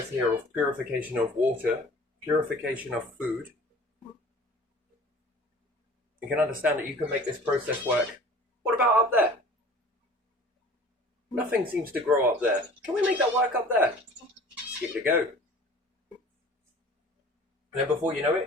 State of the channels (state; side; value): normal; both; correlation 0.46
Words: here of purification of water, purification of food, you can understand that you can make this process work. What about up there? Nothing seems to grow up there. Can we make that work up there? Just give it a go. And then before you know